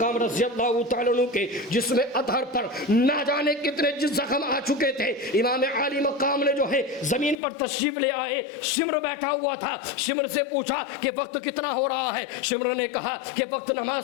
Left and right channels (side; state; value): right; drops out; at 7.4 s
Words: رضی اللہ تعالیٰ عنہ کے جسم اطہر پر نہ جانے کتنے زخم آ چکے تھے۔ امام عالی مقام نے جو ہے زمین پر تشریف لے آئے، شمر بیٹھا ہوا تھا، شمر سے پوچھا کہ وقت کتنا ہو رہا ہے؟ شمر نے کہا کہ وقت